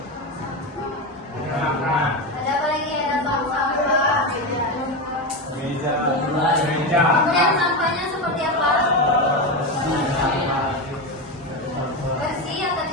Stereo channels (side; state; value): both; normal; correlation 0.16